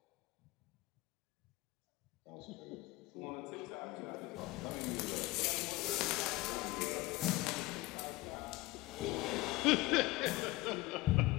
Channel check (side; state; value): right; quieter; 19.9 dB